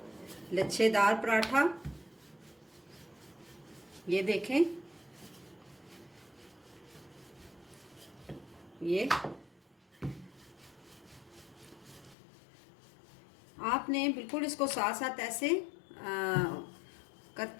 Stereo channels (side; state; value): right; drops out; at 12.2 s